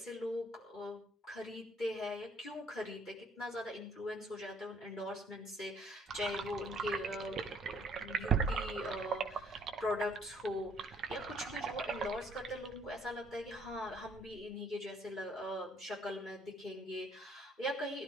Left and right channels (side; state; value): both; normal; correlation 0.62